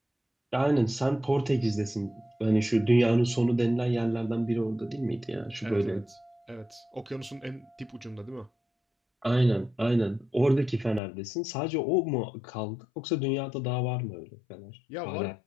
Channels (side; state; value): right; drops out; at 11.0 s